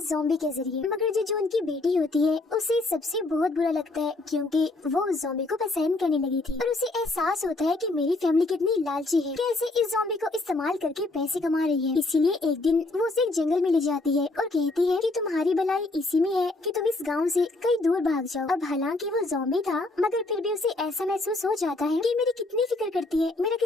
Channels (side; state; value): right; quieter; 3.0 dB